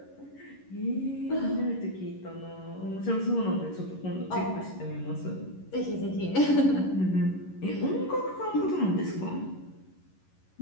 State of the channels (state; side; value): late; right; 11 ms